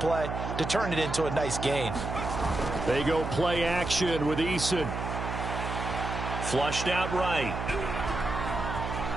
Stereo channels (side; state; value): right; noise; hum, 4 dB below the sound